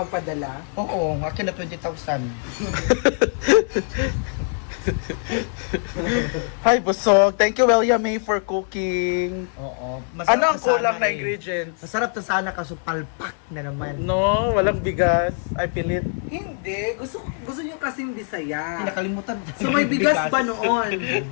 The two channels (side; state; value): right; silent; 59 dB below the other